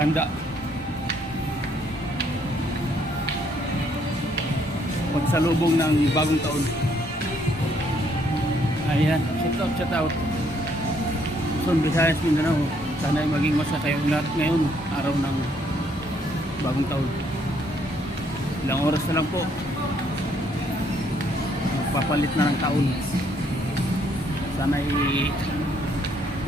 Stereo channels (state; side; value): normal; both; correlation 0.69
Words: Pagsalubong ng bagong taon. Ayan, shout out. Luzon, Visayas, Mindanao. Sana ay maging masaya kayong lahat ngayon, araw ng bagong taon. Ilang oras na lang po. Magpapalit na ng taon. Sana ay